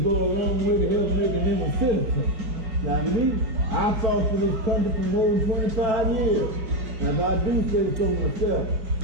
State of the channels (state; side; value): late; left; 5.0 ms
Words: go a long way to help making him a citizen. Now me, I fought for this country for more than 25 years. Now if I do say so myself,